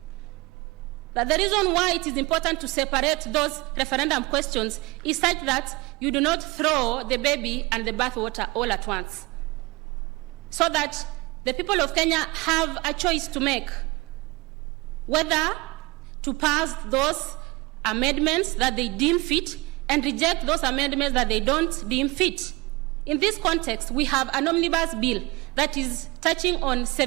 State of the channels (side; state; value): left; quieter; 23.9 dB